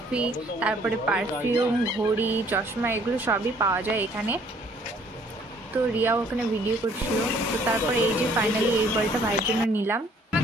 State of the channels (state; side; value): normal; both; correlation 0.60